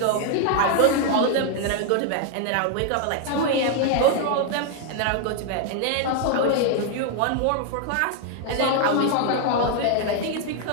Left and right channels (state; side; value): different; both; correlation 0.00